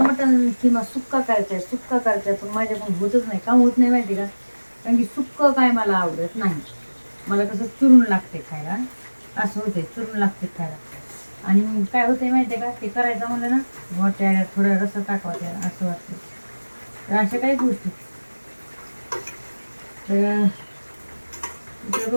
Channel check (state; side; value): inverted; both; correlation -1.00